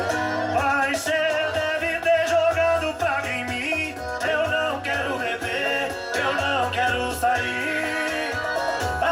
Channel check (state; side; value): identical; both; correlation 1.00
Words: Mas cê deve ter jogado praga em mim. Eu não quero beber, eu não quero sair.